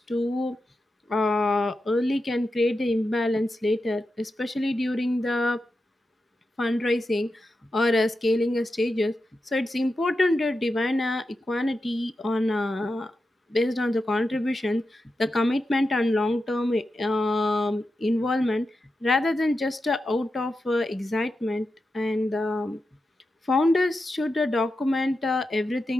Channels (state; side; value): normal; both; correlation 0.89